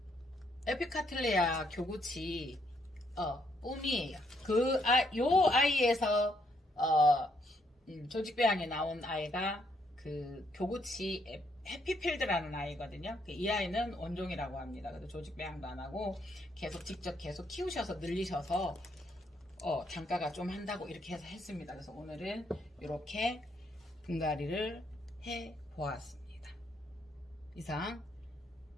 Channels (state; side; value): normal; both; correlation 0.73